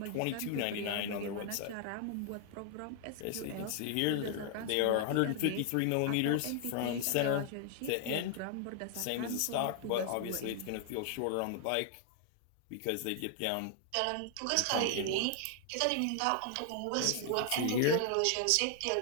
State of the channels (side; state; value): both; different; correlation 0.00